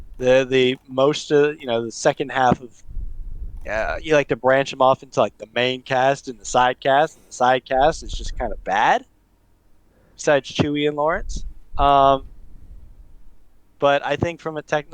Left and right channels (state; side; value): identical; both; correlation 1.00